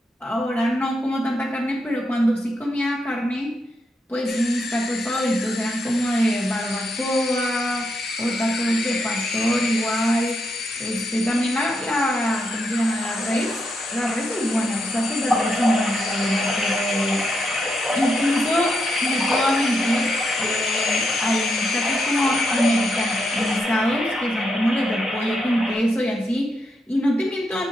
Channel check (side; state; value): both; normal; correlation 0.81